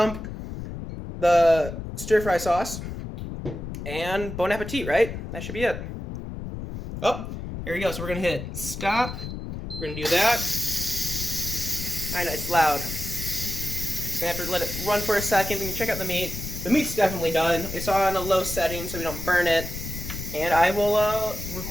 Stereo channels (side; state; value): left; noise; rumble, 8 dB below the sound